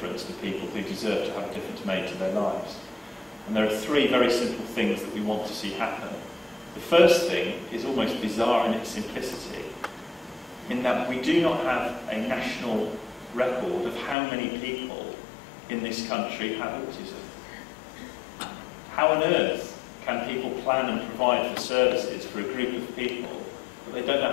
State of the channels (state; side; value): drops out; right; at 14.2 s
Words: to people who deserve to have a difference made to their lives. And there are 3 very simple things that we want to see happen. The first thing is almost bizarre in its simplicity, in that we do not have a national record of how many people in this country have autism. How on earth can people plan and provide for services for a group of people, but they don't know